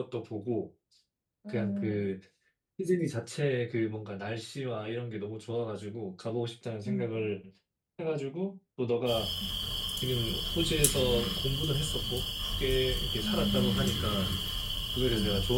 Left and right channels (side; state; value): both; identical; correlation 1.00